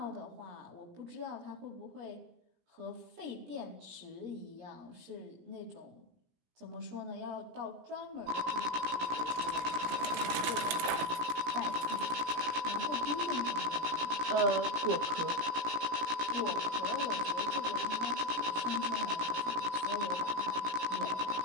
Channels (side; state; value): left; late; 17 ms